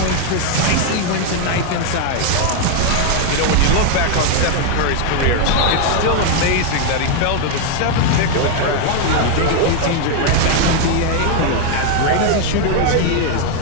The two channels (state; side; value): different; both; correlation 0.01